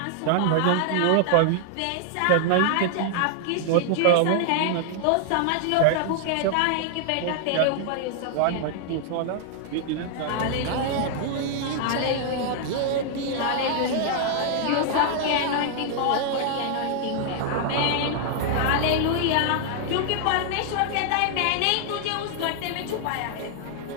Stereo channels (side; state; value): both; different; correlation 0.00